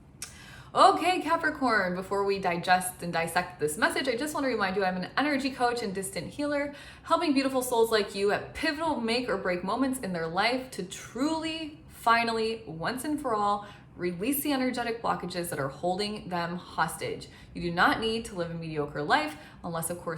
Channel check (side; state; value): both; identical; correlation 1.00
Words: Okay, Capricorn, before we digest and dissect this message, I just want to remind you I'm an energy coach and distant healer, helping beautiful souls like you at pivotal make or break moments in their life to truly, finally, once and for all, release the energetic blockages that are holding them hostage. You do not need to live a mediocre life, unless of